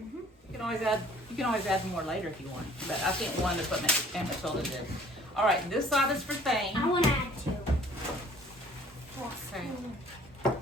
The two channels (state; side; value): normal; both; correlation 0.54